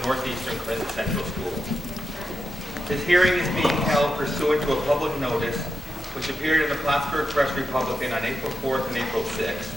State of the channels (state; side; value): normal; both; correlation 0.88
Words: the Northeastern Clinton Central School. This hearing is being held pursuant to a public notice which appeared in the Plattsburgh Press Republican on April 4th and April 6th